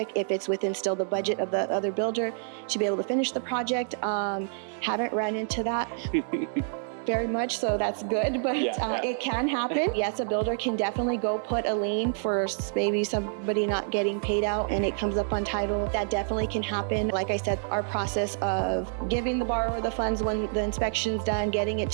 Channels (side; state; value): left; silent; digital silence